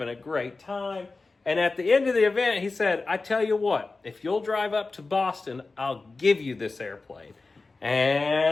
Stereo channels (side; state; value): right; quieter; 3.7 dB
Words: a great time. And at the end of the event, he said, I tell you what, if you'll drive up to Boston, I'll give you this airplane.